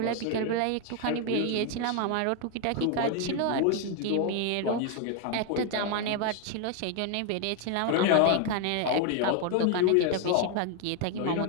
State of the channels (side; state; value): both; different; correlation 0.01